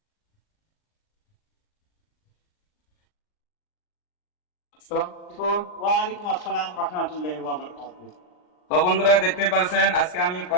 আসসালামু আলাইকুম। ওয়ালাইকুম আসসালাম রহমতুল্লাহি ওয়া বারাকাতুহু। তো বন্ধুরা, দেখতে পাচ্ছেন আজকে আমি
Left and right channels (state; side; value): late; right; 39 ms